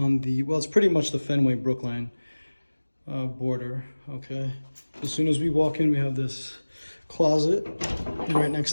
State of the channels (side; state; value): both; inverted; correlation -1.00